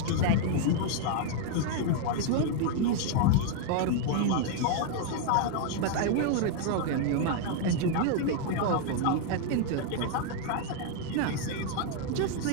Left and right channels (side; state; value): both; different; correlation 0.00